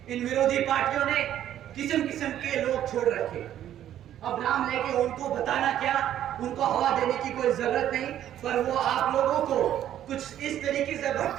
इन विरोधी पार्टियों ने किस्म के लोग छोड़ रखे। अब नाम लेके उनको बताना क्या, उनको हवा देने की कोई जरूरत नहीं, पर वो आप लोगों को कुछ इस तरीके से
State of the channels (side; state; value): left; quieter; 11.4 dB